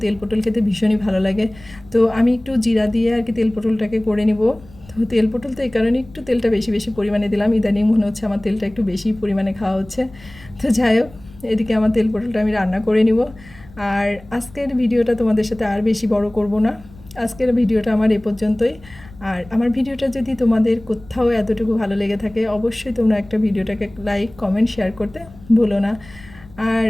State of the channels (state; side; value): noise; left; rumble, 22 dB below the sound